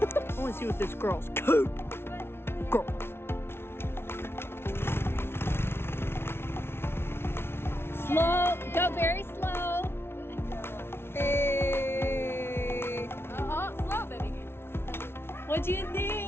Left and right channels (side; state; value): right; late; 0.12 ms